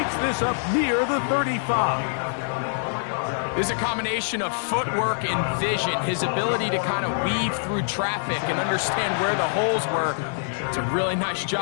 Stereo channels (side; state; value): right; silent; digital silence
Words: this up near the 35. There's a combination of footwork and vision, his ability to kind of weave through traffic and understand where the holes were. It's a really nice